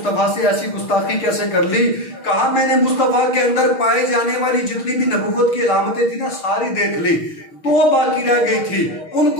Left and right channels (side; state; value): right; late; 6.6 ms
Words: से ऐसी गुस्ताखी कैसे कर ली? कहा मैंने मुस्तफा के अंदर पाए जाने वाली जितनी भी नबुव्वत की अलामतें थी ना सारी देख ली, 2 बाकी रह गई थी,